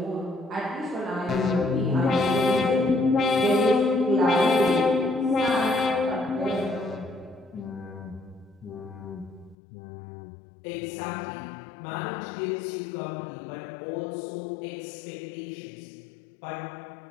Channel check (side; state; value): right; drops out; at 9.6 s